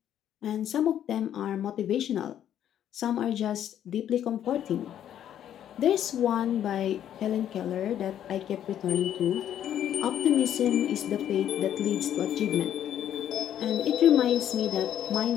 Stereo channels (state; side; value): quieter; right; 10.4 dB